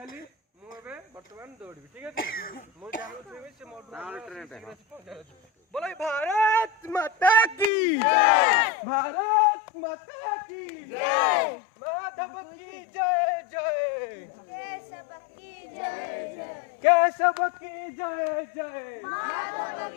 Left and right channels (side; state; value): right; drops out; at 7.7 s